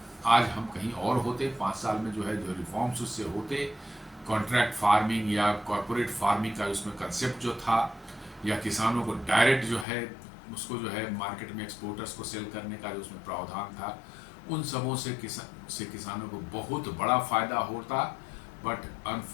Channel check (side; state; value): right; drops out; at 9.9 s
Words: आज हम कहीं और होते। 5 साल में जो है जो रिफॉर्म्स उससे होते, कॉन्ट्रैक्ट फार्मिंग या कॉर्पोरेट फार्मिंग का उसमें कंसेप्ट जो था, या किसानों को डायरेक्ट जो है उसको जो है मार्केट में एक्सपोर्टर्स को सेल करने का जो उसमें प्रावधान था, उन सबों से किसानों को बहुत बड़ा फायदा होता, बट